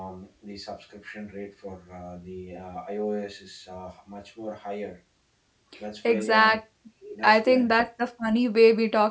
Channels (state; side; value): identical; both; correlation 1.00